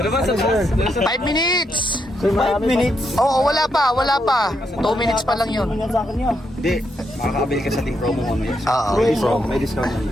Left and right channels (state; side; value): normal; both; correlation 0.79